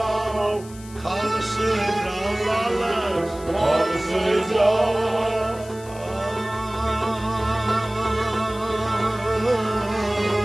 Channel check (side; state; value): left; noise; hiss, 20 dB below the sound